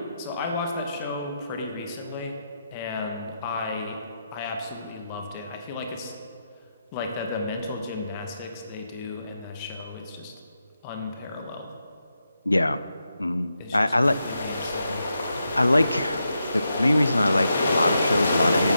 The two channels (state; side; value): inverted; both; correlation -0.85